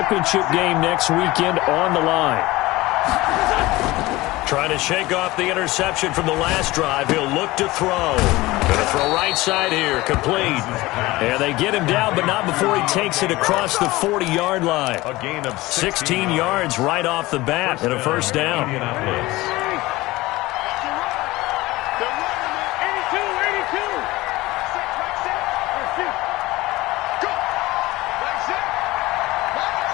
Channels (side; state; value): right; quieter; 19.6 dB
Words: game next weekend on the line. Trying to shake off the interception from the last drive. He'll look to throw. Going to throw right side here, complete. And they get him down, but not before he takes it across the 40-yard line. A gain of 16 yards right off the bat and a first down.